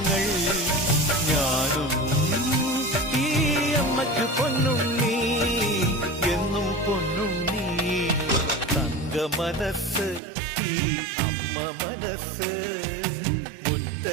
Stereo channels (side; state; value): left; drops out; at 10.2 s